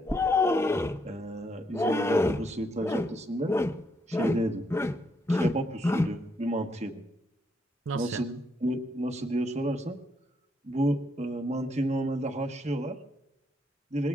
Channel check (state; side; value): normal; both; correlation 0.75